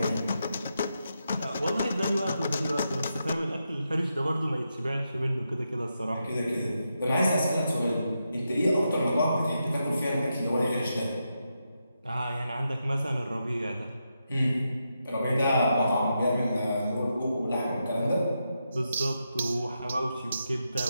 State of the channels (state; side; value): inverted; both; correlation -0.85